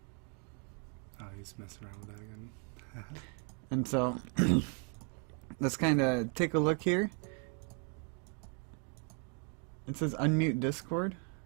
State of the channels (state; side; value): quieter; left; 39.6 dB